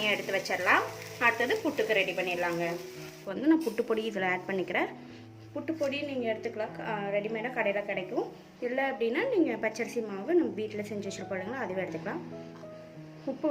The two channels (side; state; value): both; identical; correlation 1.00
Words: எடுத்து வச்சிடலாம். அடுத்தது புட்டுக்கு ரெடி பண்ணிடலாங்க. இப்போ நான் புட்டு பொடி இதில் ஆட் பண்ணிக்கிறேன். புட்டு பொடி நீங்கள் எடுத்துக்கலாம், ரெடிமேடாக கடையில் கிடைக்கும். இல்லை அப்படின்னா நீங்கள் பச்சரிசி மாவு நம்ம வீட்டில் செஞ்சு வச்சுருப்போம், அதுவே எடுத்துக்கலாம்.